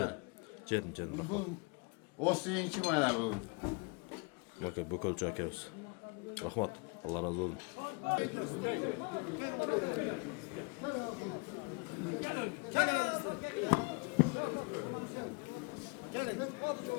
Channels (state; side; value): quieter; right; 31.3 dB